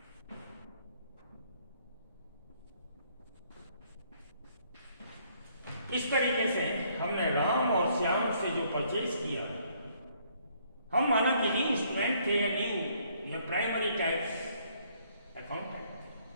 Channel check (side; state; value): both; inverted; correlation -0.66